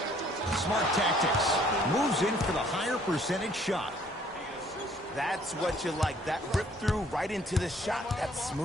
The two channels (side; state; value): both; normal; correlation 0.60